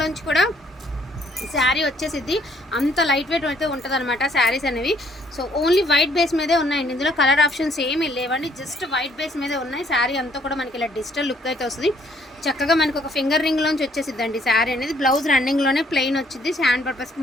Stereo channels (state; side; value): normal; both; correlation 0.65